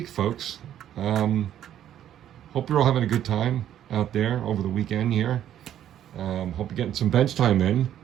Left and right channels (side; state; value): left; quieter; 10.9 dB